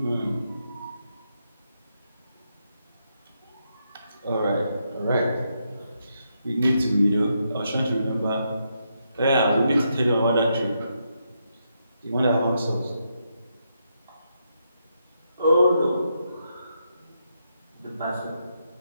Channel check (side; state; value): both; inverted; correlation -0.80